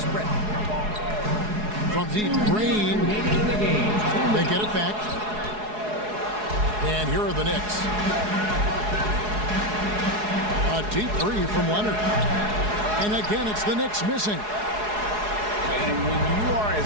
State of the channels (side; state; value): left; late; 4.8 ms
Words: From deep, Green. They get it back. And here are the Knicks. A deep three from Leonard. And again, it's the Knicks missing. And when you are as